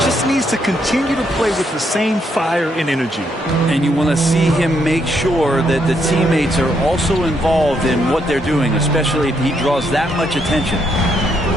Just needs to continue to play with the same fire and energy. And you want to see him make sure that the teammates are also involved in what they're doing, especially if he draws that much attention.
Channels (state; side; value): normal; both; correlation 0.75